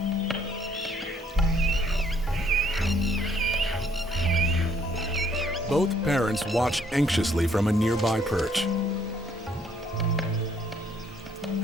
Both parents watch anxiously from a nearby perch.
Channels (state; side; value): normal; both; correlation 0.65